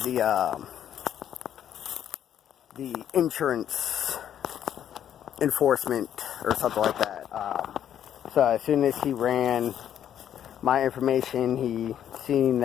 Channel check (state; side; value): quieter; right; 10.0 dB